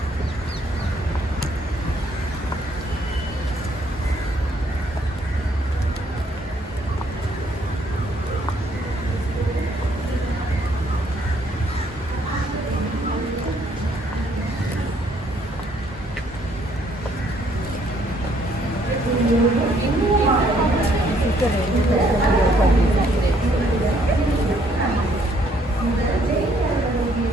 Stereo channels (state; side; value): normal; both; correlation 0.67